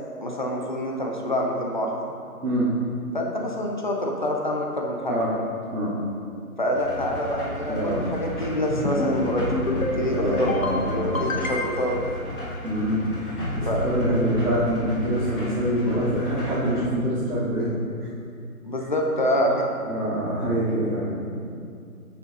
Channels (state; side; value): normal; both; correlation 0.08